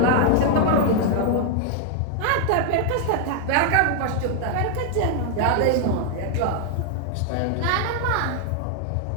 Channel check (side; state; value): both; different; correlation 0.00